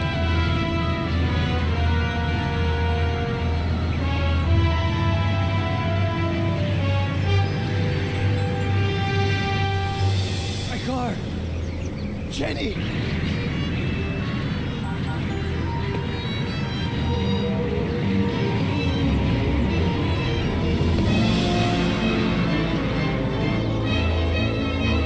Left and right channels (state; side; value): identical; both; correlation 1.00